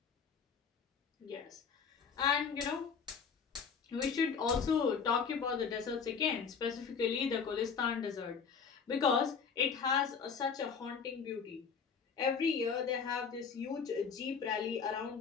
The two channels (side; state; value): right; quieter; 6.1 dB